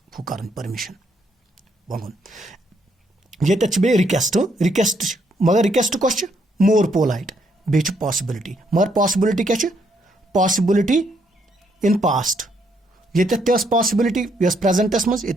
हु कर परमिशन वगुन. ये बे रिक्वेस्ट. रिक्वेस्ट मगर रिक्वेस्ट कस मोर पोलाइट. बे पॉसिबिलिटी. मगर पॉसिबिलिटी क्या पॉसिबिलिटी इन पास्ट. ये पॉसिबिलिटी यस प्रेजेंटस मज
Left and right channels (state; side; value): normal; both; correlation 0.73